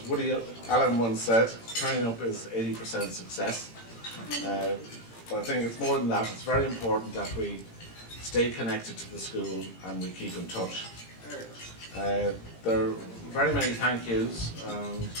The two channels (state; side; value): late; right; 18 ms